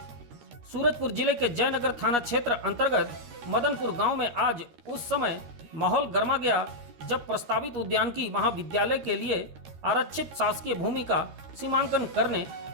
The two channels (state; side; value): late; left; 13 ms